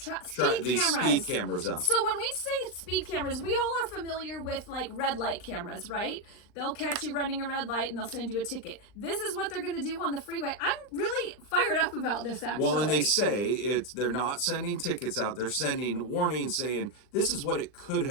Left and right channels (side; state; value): right; late; 39 ms